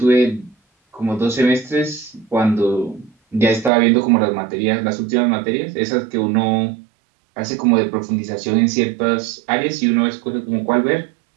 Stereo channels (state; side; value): drops out; left; at 3.7 s